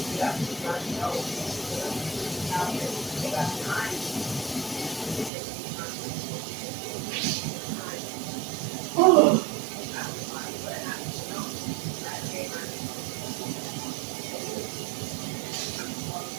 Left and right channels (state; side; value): drops out; left; at 5.3 s